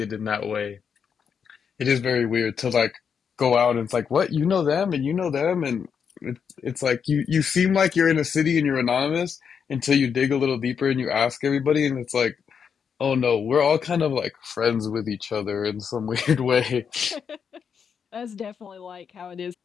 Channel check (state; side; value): quieter; right; 6.9 dB